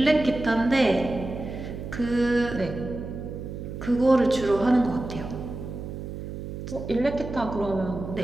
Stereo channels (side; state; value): right; noise; hum, 8 dB below the sound